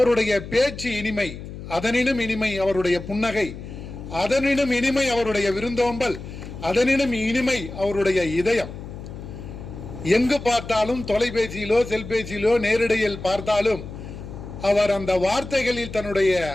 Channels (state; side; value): noise; left; hum, 11 dB below the sound